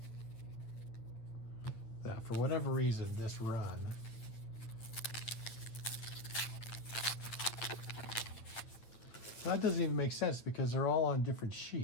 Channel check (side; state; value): right; late; 9.2 ms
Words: That for whatever reason, this run that doesn't even make sense because they're all on different